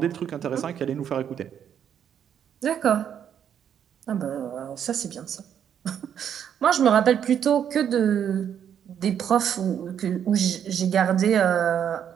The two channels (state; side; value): quieter; left; 8.9 dB